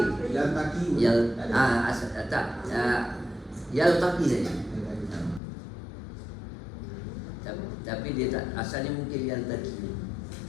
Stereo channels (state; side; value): drops out; right; at 5.4 s